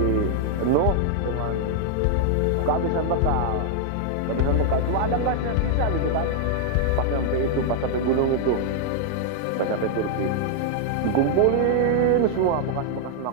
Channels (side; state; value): both; different; correlation 0.00